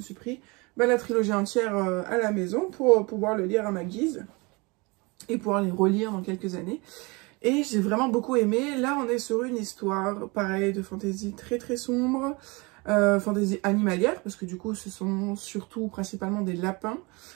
pris la trilogie entière à la maison pour pouvoir le lire à ma guise, et pouvoir les relire dans quelques années. Et j'ai vraiment beaucoup aimé. Là, on est sur une histoire, pareil, de fantasy très très sombre, fantasy animalière, parce que du coup, ce sont surtout principalement des lapins.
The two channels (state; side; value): quieter; left; 27.0 dB